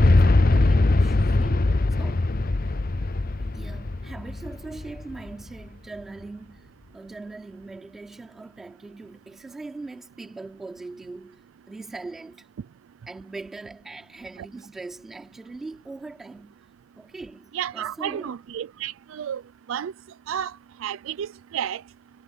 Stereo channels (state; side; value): normal; both; correlation 0.84